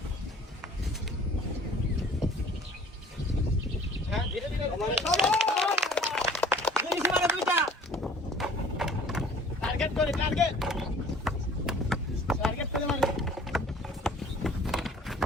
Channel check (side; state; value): both; normal; correlation 0.50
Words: হ্যাঁ ধীরে ধীরে দুইটা টার্গেট করে টার্গেট করে মারি